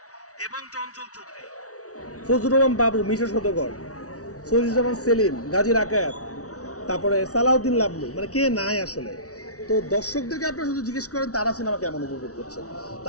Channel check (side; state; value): right; late; 0.66 ms